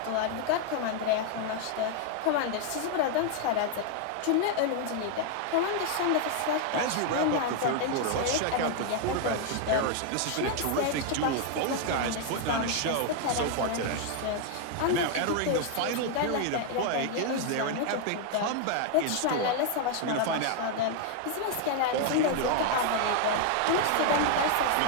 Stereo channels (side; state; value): both; different; correlation 0.00